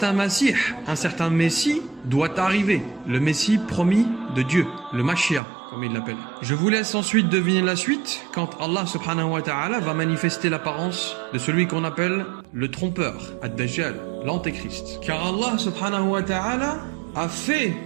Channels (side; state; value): left; drops out; at 5.4 s